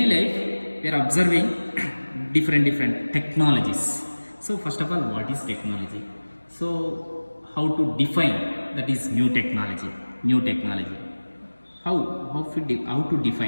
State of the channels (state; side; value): inverted; both; correlation -1.00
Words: life we are observing different technologies. So first of all, what is technology? So how to define that is new technology? How to